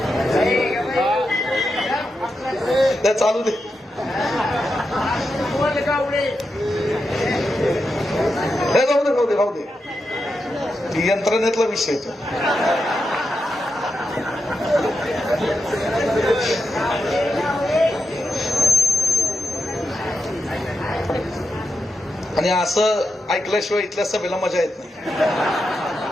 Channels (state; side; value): normal; both; correlation 0.87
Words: ते चालू दे, राहू दे, ती यंत्रणेतला विषय तो. आणि असं ऐकल्याशिवाय इथल्या सभेला मजा येत नाही.